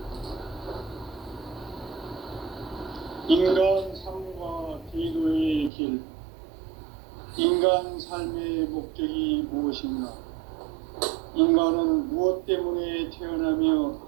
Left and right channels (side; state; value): left; drops out; at 5.7 s